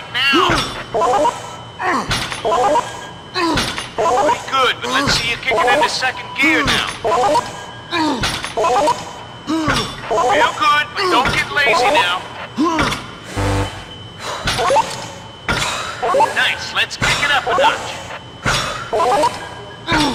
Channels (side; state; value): both; identical; correlation 1.00